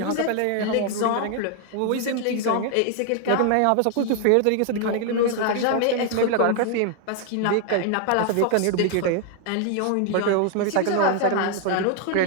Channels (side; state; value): both; different; correlation 0.00